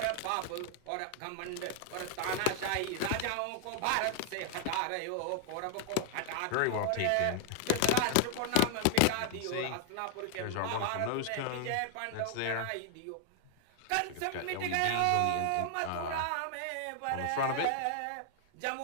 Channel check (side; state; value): both; different; correlation 0.00